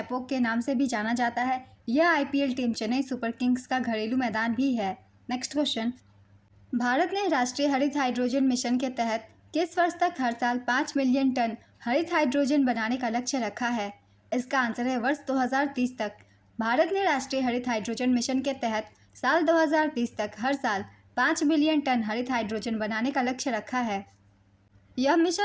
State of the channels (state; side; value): identical; both; correlation 1.00